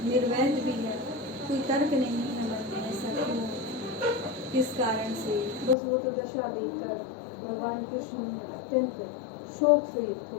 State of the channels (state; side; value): drops out; right; at 5.8 s